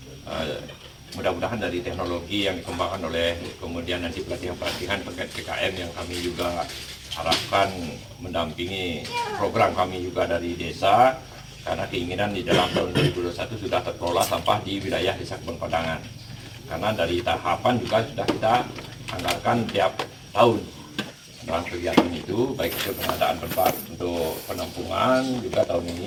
mudah-mudahan dari teknologi yang dikembangkan oleh kemudian nanti pelatihan-pelatihan terkait PKM yang kami juga harapkan mendampingi program kami juga dari desa. Karena keinginan di dalam tahun 2021 sudah terkelola sampah di wilayah Desa Kebon Pedangan. Karena dari tahapan juga sudah kita anggarkan tiap tahun dalam kegiatan itu, baik itu pengadaan tempat untuk penampungan, juga tahun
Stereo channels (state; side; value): identical; both; correlation 1.00